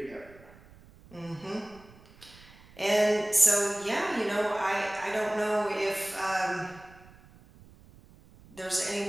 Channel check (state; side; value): noise; right; rumble, 24 dB below the sound